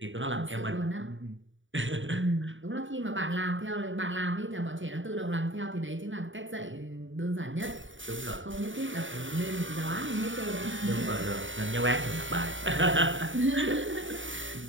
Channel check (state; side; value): late; left; 0.56 ms